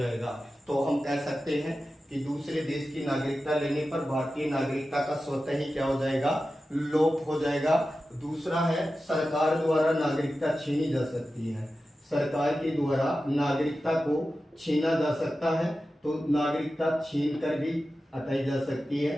तो हम कह सकते हैं कि दूसरे देश की नागरिकता लेने पर भारतीय नागरिकता का स्वतः ही क्या हो जाएगा, लोप हो जाएगा। दूसरा है सरकार द्वारा नागरिकता छीनी जा सकती है, सरकार के द्वारा नागरिकता को छीना जा सकता है, तो नागरिकता छीन कर भी हटाई जा सकती है।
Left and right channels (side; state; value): both; normal; correlation 0.93